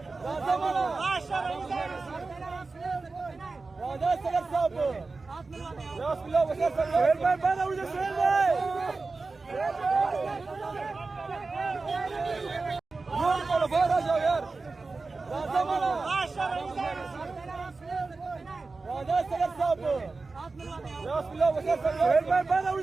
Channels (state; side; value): quieter; left; 3.8 dB